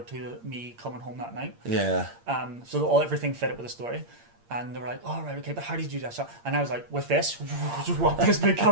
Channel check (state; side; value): late; left; 8.6 ms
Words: to me coming home that night. Yeah. So everything fit it with the story. And they were like, "Oh right, okay, but how did you do that shot?" And I was like, "With this, just walk this big